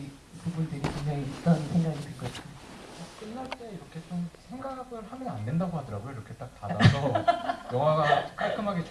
부분들이 분명히 있던 생각이 들거든요. 끝날 때 이렇게 좀 생각을 하면 안 된다고 하더라고요. 이렇게 딱 닫아서 영화가 깔끔하게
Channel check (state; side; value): identical; both; correlation 1.00